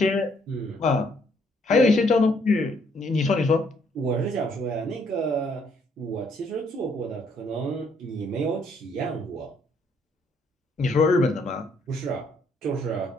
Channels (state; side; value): normal; both; correlation 0.68